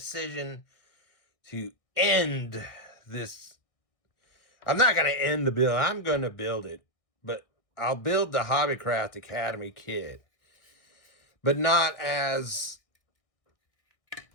to end this. I'm not going to end the build. I'm going to build it. But I'll build the Hobbycraft Academy kit. But not as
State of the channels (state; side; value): late; right; 1.6 ms